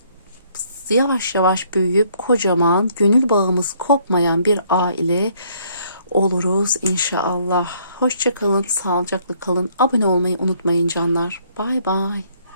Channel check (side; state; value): both; inverted; correlation -0.65